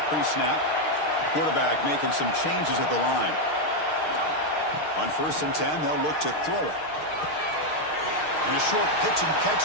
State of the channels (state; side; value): late; right; 6.5 ms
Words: pre-snap. Quarterback making some changes at the line. On 1st and 10, they'll look to throw it. And a short pitch and catch